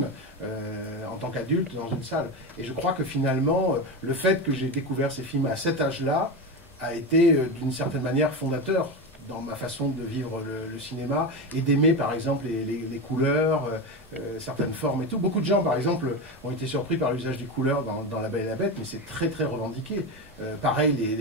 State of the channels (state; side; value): normal; both; correlation 0.19